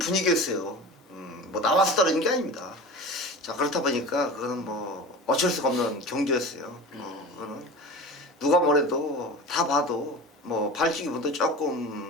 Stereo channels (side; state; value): both; normal; correlation 0.33